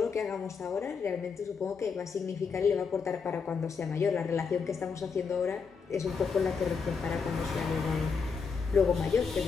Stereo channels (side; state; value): right; quieter; 5.5 dB